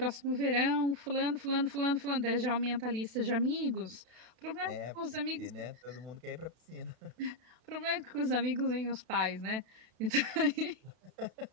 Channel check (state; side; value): late; left; 32 ms